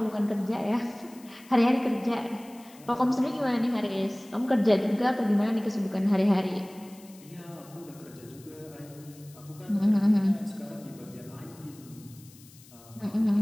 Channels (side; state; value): left; noise; hiss, 23 dB below the sound